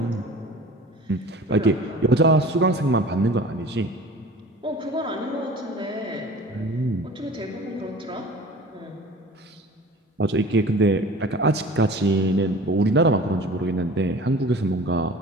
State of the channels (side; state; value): both; normal; correlation 0.42